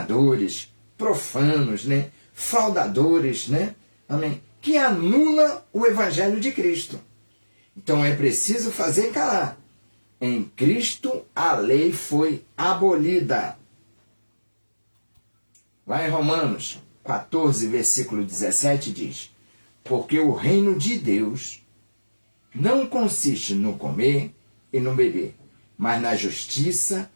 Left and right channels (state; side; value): inverted; both; correlation -1.00